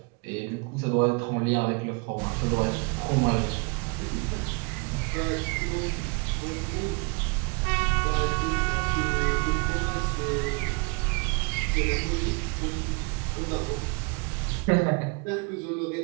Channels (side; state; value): left; quieter; 31.2 dB